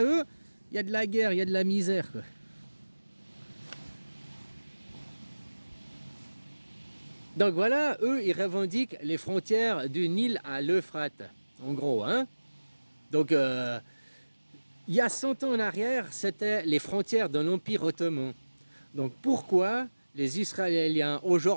eux, il y a de la guerre, il y a de la misère, quoi. Donc voilà, eux, ils revendiquent les frontières du Nil à l'Euphrate, en gros, hein. Donc, il y a 100 ans en arrière, c'était les frontières de l'Empire ottoman. Donc pourquoi les Israéliens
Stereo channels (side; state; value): both; inverted; correlation -1.00